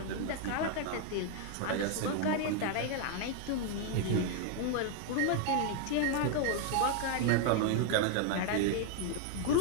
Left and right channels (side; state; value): both; different; correlation 0.00